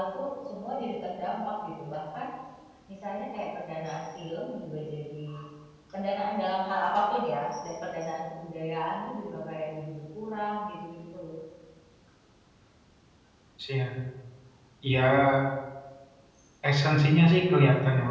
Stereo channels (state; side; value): identical; both; correlation 1.00